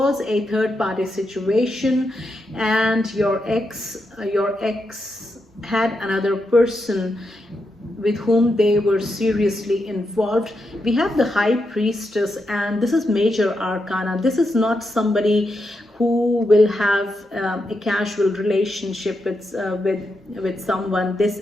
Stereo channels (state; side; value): normal; both; correlation 0.85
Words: a third-party situation, and your ex had another person with whom they were seriously involved. We have the High Priestess, and this is Major Arcana. This is not somebody who will have a casual relationship with someone. This